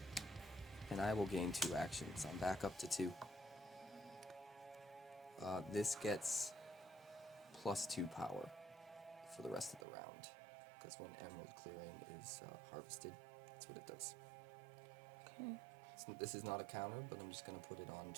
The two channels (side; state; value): left; drops out; at 9.9 s